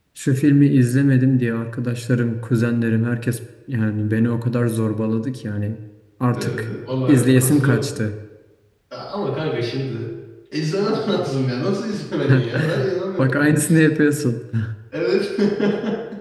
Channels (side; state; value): both; identical; correlation 1.00